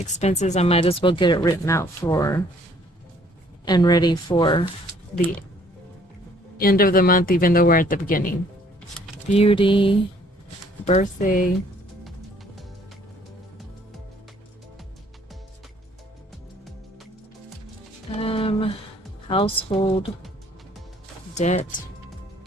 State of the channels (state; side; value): normal; both; correlation 0.61